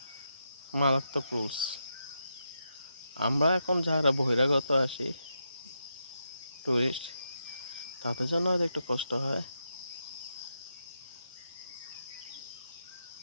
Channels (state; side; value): inverted; both; correlation -0.84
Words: মারাত্মক রুলস। আমরা এখন যারা বহিরাগত আসি, টুরিস্ট, তাদের জন্য হয়তো একটু কষ্ট হয়।